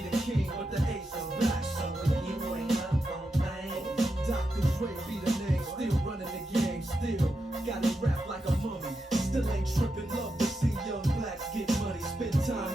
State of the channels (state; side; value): normal; both; correlation 0.86